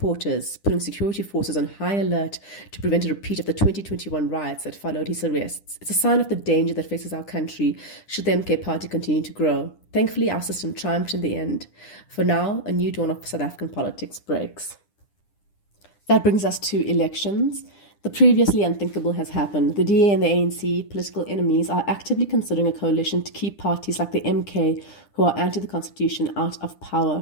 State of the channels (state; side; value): late; right; 9.9 ms